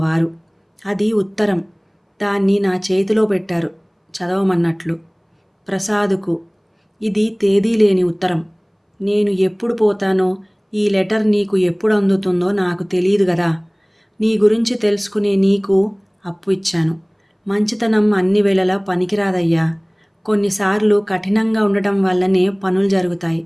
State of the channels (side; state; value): both; identical; correlation 1.00